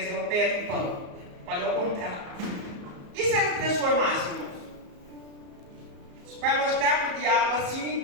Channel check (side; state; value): left; late; 34 ms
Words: o pedra em pão. Falei ao contrário. E se ele transformasse, irmãos? Para mostrar para o diabo